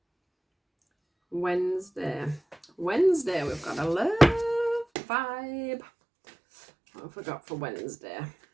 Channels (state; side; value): drops out; left; at 4.9 s